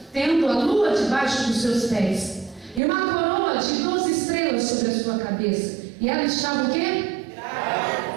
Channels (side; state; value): left; drops out; at 2.8 s